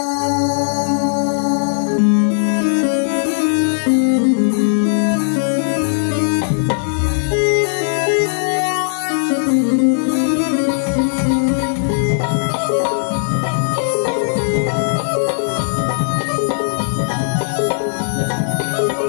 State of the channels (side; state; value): right; silent; 68 dB below the other